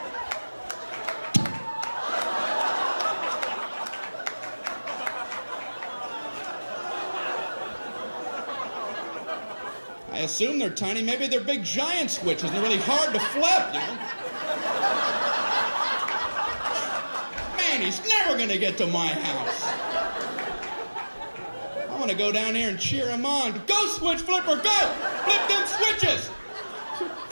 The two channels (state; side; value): inverted; both; correlation -1.00